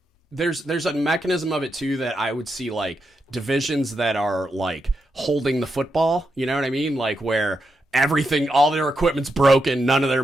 there's a mechanism of it too that I would see, like divisions that are like holding the football, you know what I mean? Like where everything, all their equipment's broken, none of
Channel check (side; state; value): both; normal; correlation 0.85